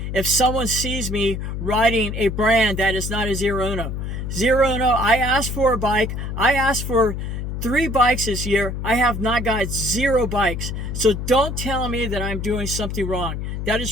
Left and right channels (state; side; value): noise; left; hum, 4 dB below the sound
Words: if someone sees me riding a brand that is not a Zero Uno. Zero Uno, I asked for a bike. I asked for 3 bikes this year. I have not got 0 bikes. So don't tell me that I'm doing something wrong. That